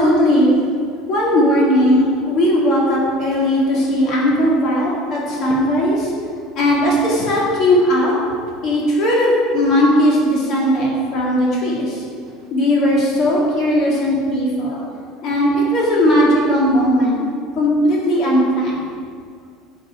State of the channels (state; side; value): normal; both; correlation 0.46